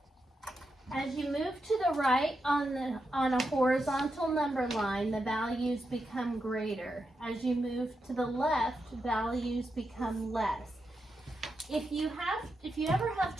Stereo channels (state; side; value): normal; both; correlation 0.86